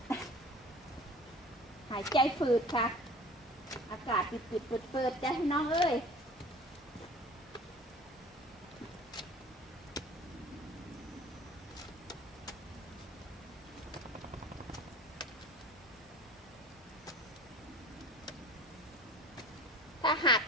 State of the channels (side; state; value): both; normal; correlation 0.44